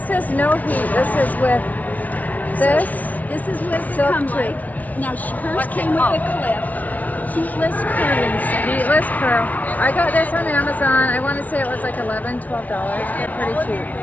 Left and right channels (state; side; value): late; right; 0.073 ms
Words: is no heat. This is with this. This is what they Silk come tube. like. Now hers What's came it with called? a clip. Heatless curling set. Heatless curl. I got this on Amazon. I want to say it was like $11, $12. They're pretty cheap.